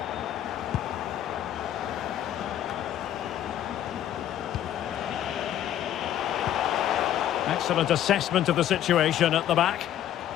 Excellent assessment of the situation at the back.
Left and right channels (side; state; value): right; quieter; 11.4 dB